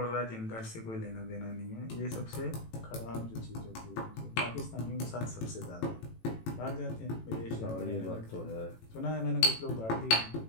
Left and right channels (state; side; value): late; right; 18 ms